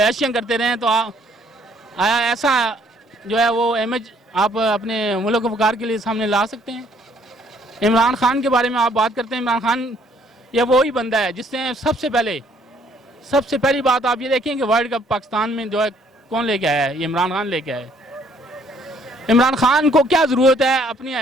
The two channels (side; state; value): both; normal; correlation 0.64